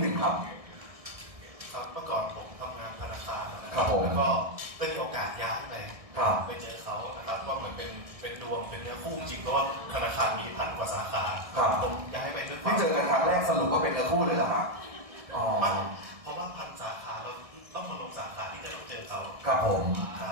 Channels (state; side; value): late; left; 1.7 ms